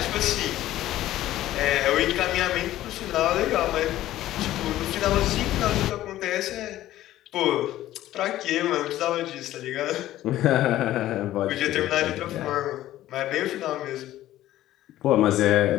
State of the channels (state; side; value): quieter; right; 14.2 dB